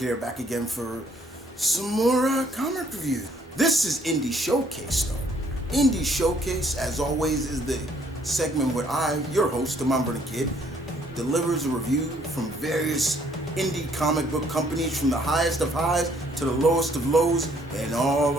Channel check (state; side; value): normal; both; correlation 0.64